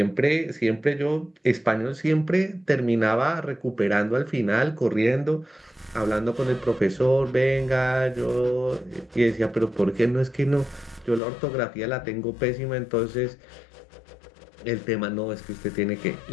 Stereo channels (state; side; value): drops out; right; at 11.2 s